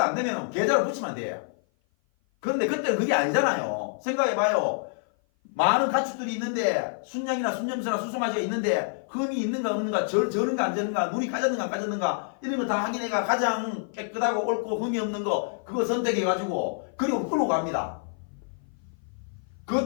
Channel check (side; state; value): right; silent; 55 dB below the other